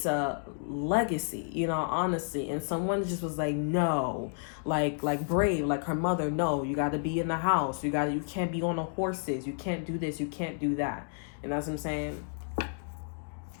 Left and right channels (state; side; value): silent; right; digital silence